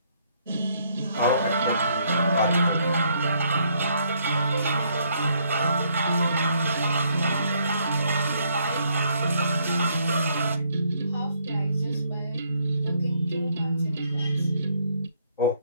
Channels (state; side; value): inverted; both; correlation -0.68